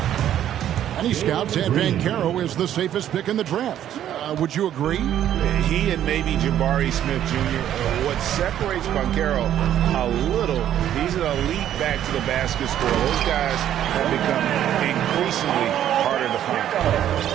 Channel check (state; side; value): quieter; left; 11.0 dB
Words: Many scouts had Banchero as the safest pick in the draft. Would you agree? He and maybe Jabari Smith Jr. What separates Banchero a little, he's an elite back to the basket scorer. Those guys have become increasingly harder to find.